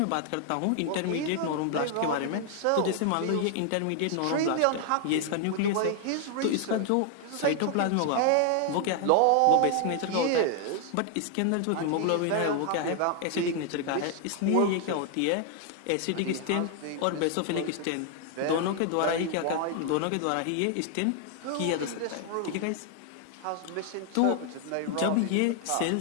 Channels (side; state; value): both; different; correlation 0.00